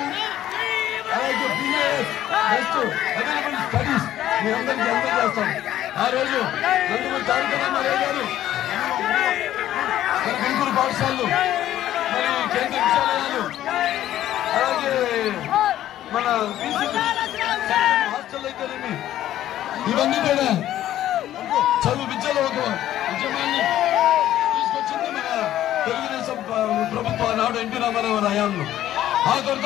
అలాగే బిఏఎస్ బెస్ట్ అవైలబుల్ స్టడీస్ మీ అందరికీ అందజేస్తాం. ఆ రోజు నందమూరి తారక రామారావు గారు మన గుంటూరు పాఠశాలలు మరి కేంద్ర విద్యాలయాలు అలాగే మన హాస్టల్ అయితేనేమి ఇవన్నీ కూడా చదువు విద్యలో ఒక ఉద్యమాన్ని తీసుకొచ్చింది మన తెలుగుదేశం ప్రభుత్వం నాడు ఎన్టీ రామారావు హయాంలో. ఆ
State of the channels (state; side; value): quieter; right; 12.7 dB